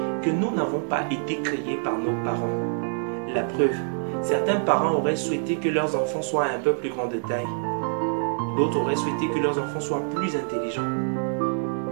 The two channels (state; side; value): silent; left; 61 dB below the other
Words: que nous n'avons pas été créés par nos parents. La preuve, certains parents auraient souhaité que leurs enfants soient un peu plus grands de taille. D'autres auraient souhaité que leurs enfants soient plus intelligents.